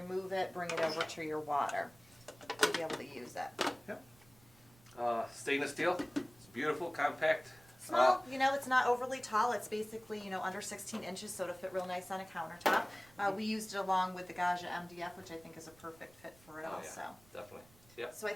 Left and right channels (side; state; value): right; noise; rumble, 27 dB below the sound